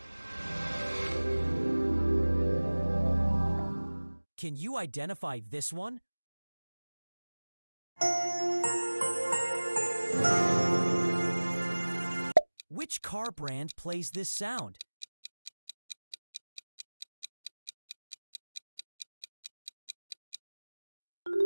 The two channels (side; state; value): both; inverted; correlation -1.00